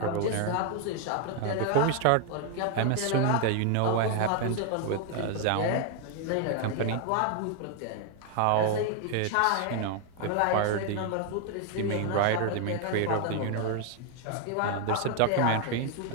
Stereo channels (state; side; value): different; both; correlation 0.00